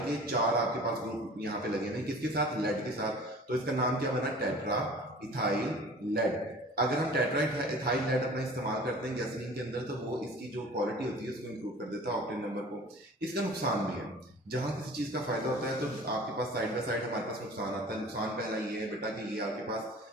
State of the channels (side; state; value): both; normal; correlation 0.44